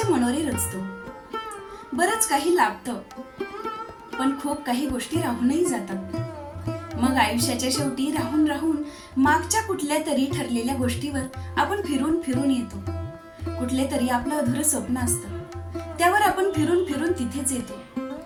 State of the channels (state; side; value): identical; both; correlation 1.00